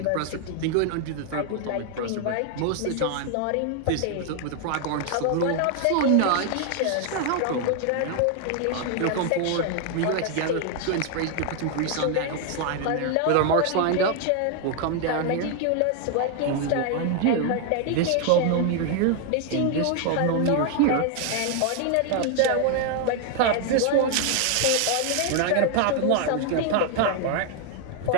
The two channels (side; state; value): both; different; correlation 0.00